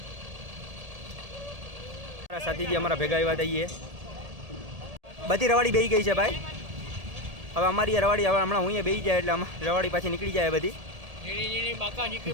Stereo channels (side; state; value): left; late; 1.8 ms